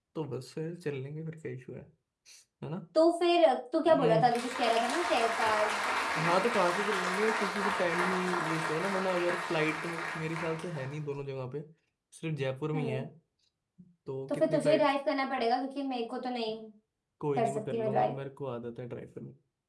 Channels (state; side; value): identical; both; correlation 1.00